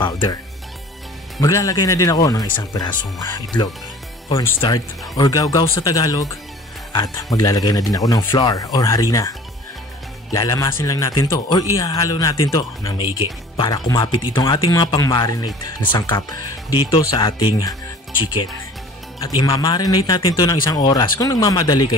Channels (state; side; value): normal; both; correlation 0.46